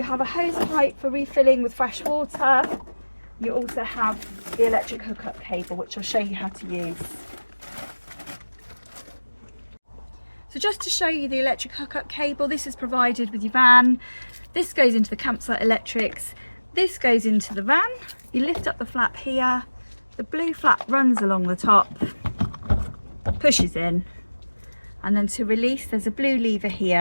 have a hose pipe for refilling with fresh water. You also have the electric hookup cable, which I'll show you how to use. So just to show you the electric hookup cable, this is provided with your van. This goes into the campsite electrics. This goes into the van. You lift up the flap here. The blue flap runs along the top, pushes in, and then to release there's a blue lever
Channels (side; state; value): both; inverted; correlation -1.00